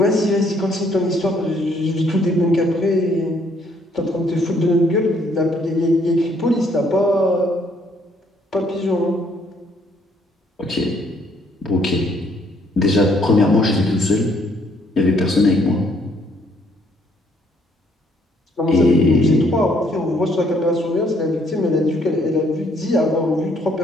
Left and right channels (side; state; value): both; normal; correlation 0.67